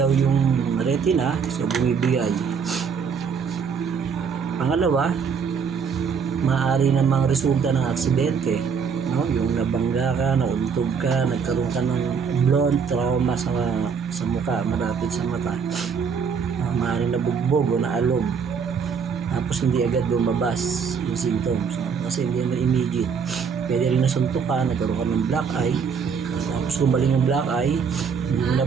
yung retina, so bumibigay. Pangalawa, maaari namang resulta ng aksidente, no? Yung nabangga ka, nauntog ka, nagkaroon ka ng blunt trauma sa mukha, malapit sa mata. Maaaring nabugbog o naalog. Tapos hindi agad lumabas yung symptoms, no? Kasi hindi na immediate. Pwede rin nasuntok ka, nagkaroon ka ng black eye. Tapos gumaling yung black eye, hindi mo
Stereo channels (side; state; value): left; quieter; 6.2 dB